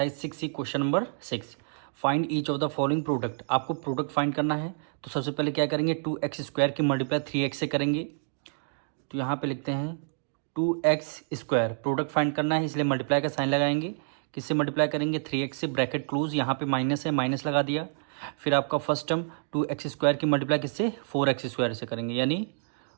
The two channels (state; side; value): silent; left; digital silence